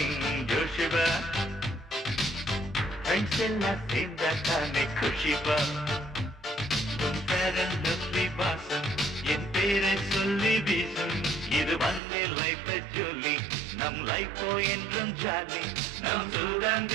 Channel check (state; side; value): drops out; left; at 12.0 s